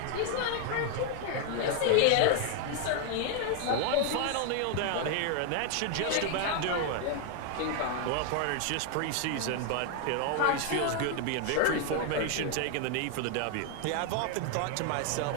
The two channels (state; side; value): different; both; correlation 0.00